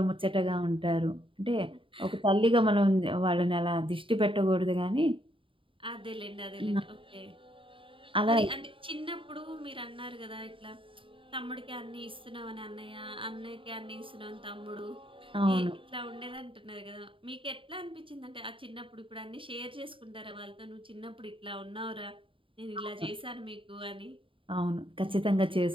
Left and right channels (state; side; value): late; left; 0.25 ms